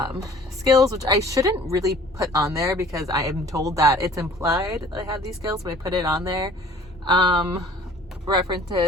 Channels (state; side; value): normal; both; correlation 0.50